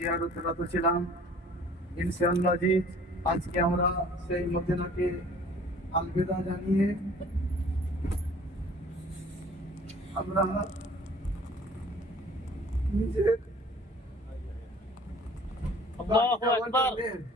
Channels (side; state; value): both; normal; correlation 0.51